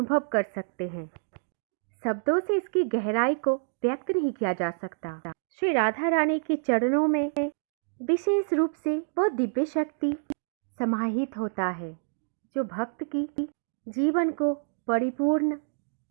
कर सकते हैं। शब्दों से इसकी गहराई को व्यक्त नहीं किया जा सकता। श्री राधा रानी के चरणों में विशेष रूप से वो दिव्य शक्ति समाहित होता है, जो भक्त की जीवन को परिपूर्ण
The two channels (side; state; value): left; silent; digital silence